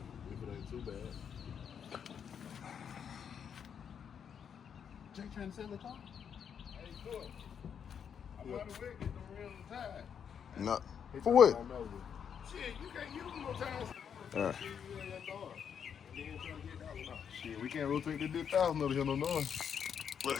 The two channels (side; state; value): right; quieter; 7.7 dB